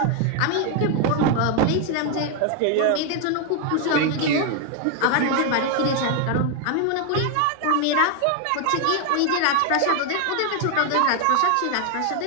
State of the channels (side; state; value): both; different; correlation 0.01